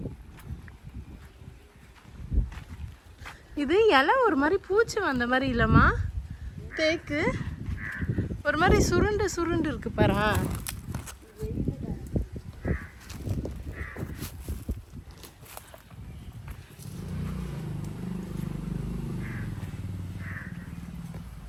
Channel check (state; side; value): identical; both; correlation 1.00